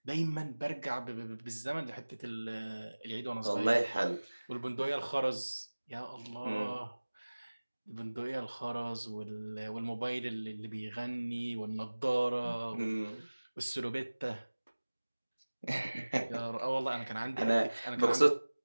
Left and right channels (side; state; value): both; inverted; correlation -1.00